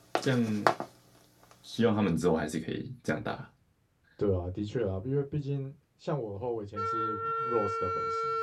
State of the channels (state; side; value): identical; both; correlation 1.00